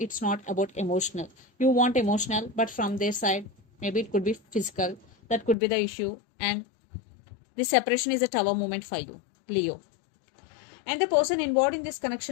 not about emotional. You want emotional, but from their side, maybe it could be physical. That could be the issue. And this separation is a Tower moment for you, Leo. And the person involved in this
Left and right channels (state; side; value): drops out; right; at 5.6 s